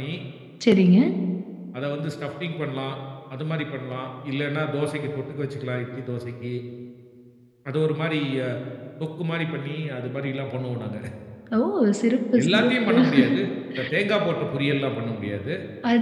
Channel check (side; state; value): both; identical; correlation 1.00